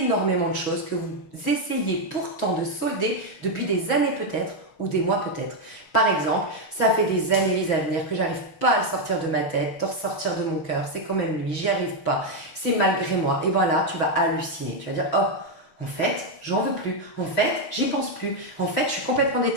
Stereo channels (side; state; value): right; late; 6.1 ms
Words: de choses que vous essayez pourtant de solder depuis des années peut-être ou des mois peut-être. Par exemple, ça fait des années à venir que j'arrive pas à le sortir de ma tête, de ressortir de mon cœur, c'est quand même lui, j'y arrive pas, c'est malgré moi. Et voilà, tu vas halluciner, tu vas dire oh, en fait, j'en veux plus, en fait, j'y pense plus, en fait, je suis complètement